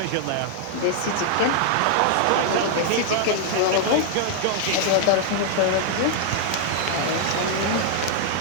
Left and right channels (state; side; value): different; both; correlation 0.00